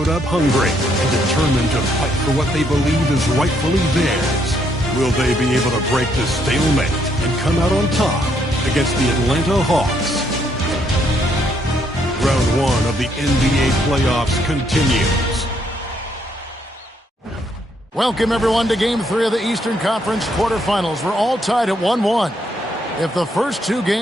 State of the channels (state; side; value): normal; both; correlation 0.72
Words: up hungry and determined to fight for what they believe is rightfully theirs. Will they be able to break the stalemate and come out on top against the Atlanta Hawks? Round one of the NBA playoffs continues. Welcome, everyone, to Game 3 of the Eastern Conference quarterfinals. We're all tied at 1-1. If the first two